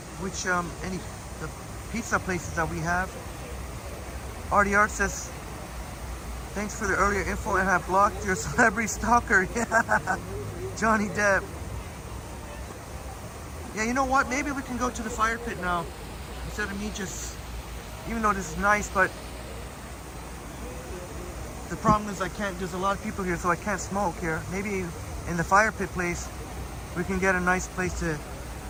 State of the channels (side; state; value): both; identical; correlation 1.00